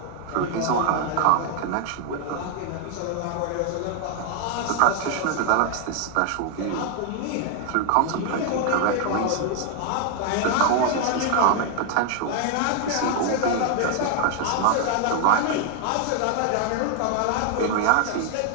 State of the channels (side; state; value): both; different; correlation 0.00